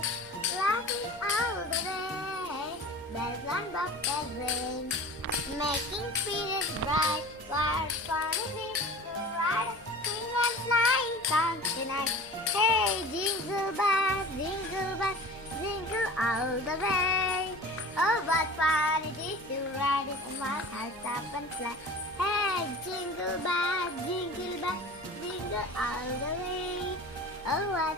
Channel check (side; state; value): left; noise; hum, 26 dB below the sound